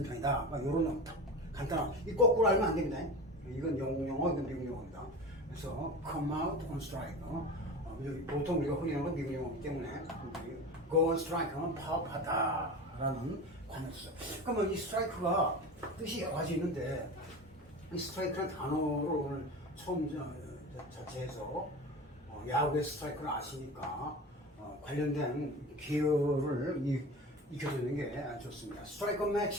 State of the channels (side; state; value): both; normal; correlation 0.31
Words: 편이다. 그러니까 이런 간단한 이 거꾸로 알면 안 됩니다. 이건 영국 용어, 이건 미국 용어입니다. 그래서 come out on strike. 보통 우리가 흔히 하는 건 미국 용어이기 때문에 go on strike 하면 파업하다라는 관어죠. 그러면 이 스트라이크가 뜻이 여러 가지 있는데 이 스트라이크라는 단어를 오늘 처음 자체에서 야구의 스트라이크를 아시니까 관련된 기여를 익혀주는 게 좋습니다. 스트라이크